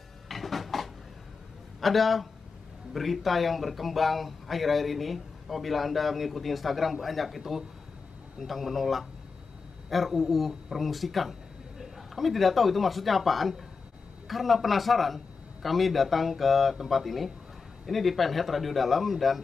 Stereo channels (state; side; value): quieter; right; 4.8 dB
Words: Ada berita yang berkembang akhir-akhir ini. Apabila Anda mengikuti Instagram, banyak itu tentang menolak RUU permusikan. Kami tidak tahu itu maksudnya apaan. Karena penasaran, kami datang ke tempat ini. Ini di Penhead Radio Dalam, dan